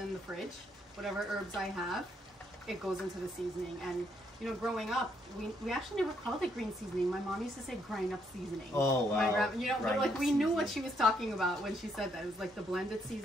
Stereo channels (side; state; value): both; normal; correlation 0.73